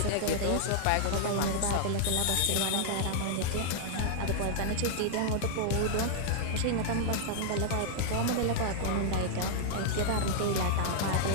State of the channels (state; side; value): different; both; correlation -0.01